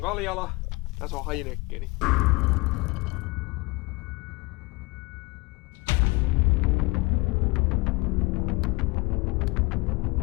Kaljala. Tässä on Heinekkeni.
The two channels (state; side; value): quieter; right; 24.2 dB